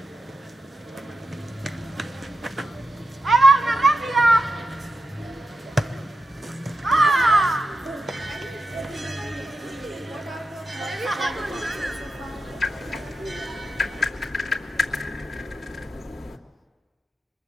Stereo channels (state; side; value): normal; both; correlation 0.89